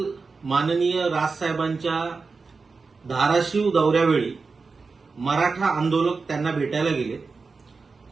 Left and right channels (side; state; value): left; quieter; 4.4 dB